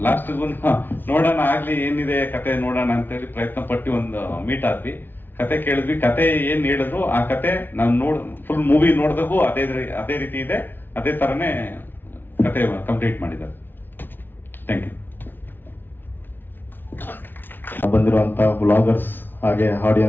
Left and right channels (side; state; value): right; late; 0.096 ms